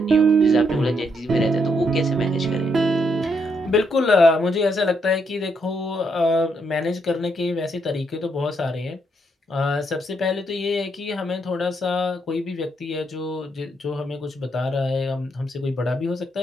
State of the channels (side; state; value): both; normal; correlation 0.76